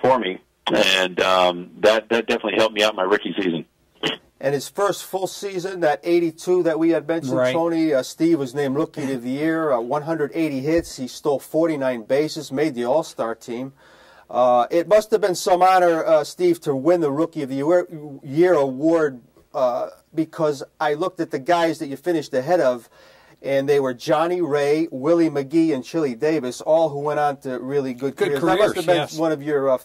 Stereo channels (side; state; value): both; identical; correlation 1.00